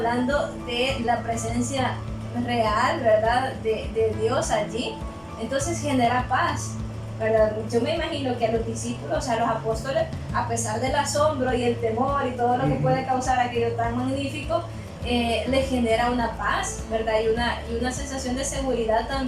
de la presencia real, ¿verdad?, de Dios allí. Entonces genera paz. ¿verdad? Yo me imagino que a los discípulos, a los apóstoles, a pesar del asombro y el temor y todo lo que puede causar aquello tan magnífico, les genera una paz, ¿verdad? Y una sensación de seguridad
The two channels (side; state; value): both; identical; correlation 1.00